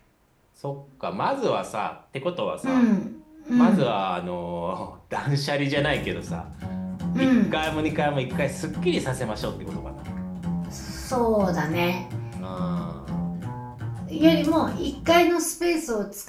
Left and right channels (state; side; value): identical; both; correlation 1.00